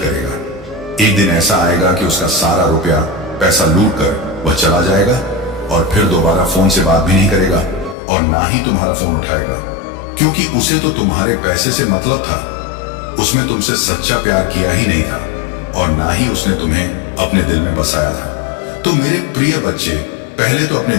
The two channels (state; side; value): drops out; right; at 8.0 s